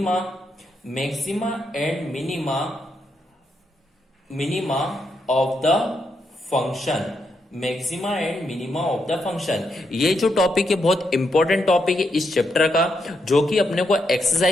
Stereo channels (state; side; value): normal; both; correlation 0.81